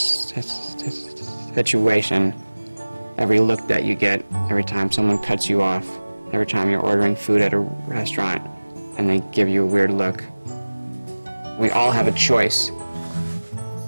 situation, every look that you get, every time someone cuts you off, every time you're ordering food at a restaurant and they give you a weird look. We all have a choice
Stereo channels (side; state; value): both; inverted; correlation -1.00